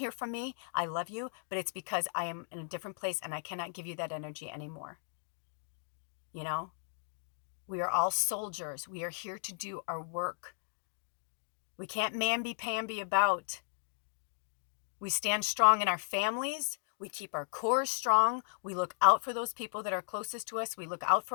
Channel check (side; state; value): right; silent; digital silence